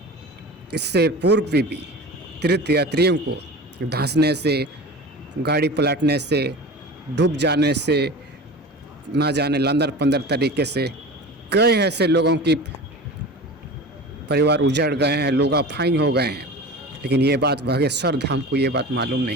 इससे पूर्व भी तीर्थ यात्रियों को धंसने से, गाड़ी पलटने से, डूब जाने से, ना जाने लंदर पंदर तरीके से कई ऐसे लोगों की परिवार उजड़ गए हैं, लोग अफाई हो गए हैं। लेकिन ये बात बागेश्वर धाम को ये बात मालूम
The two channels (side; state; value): both; normal; correlation 0.34